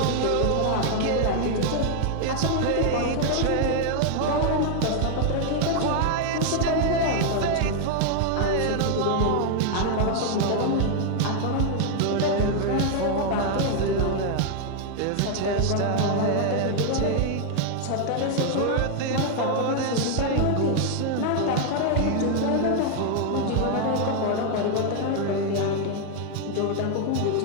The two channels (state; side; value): different; both; correlation 0.00